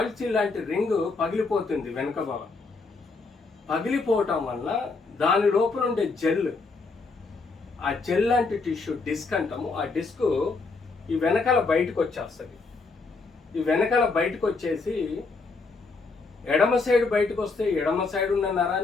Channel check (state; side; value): quieter; right; 4.0 dB